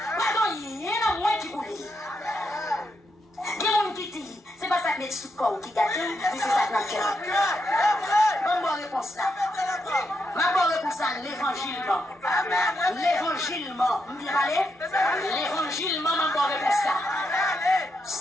pas dans rien dans moins qui pour lui. Il y a un qui dit, c'est pas ça que met sous le corps qui gâte, mais c'est ça que notre cœur. Bonne réponse là. Ma bonne réponse là, l'évangile. L'évangile, bien parlé? L'évangile, ma bonne réponse là.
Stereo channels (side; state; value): both; normal; correlation 0.82